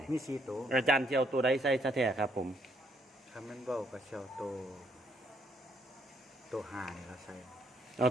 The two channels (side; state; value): both; normal; correlation 0.70